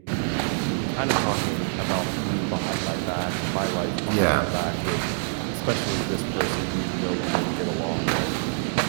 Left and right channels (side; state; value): left; silent; digital silence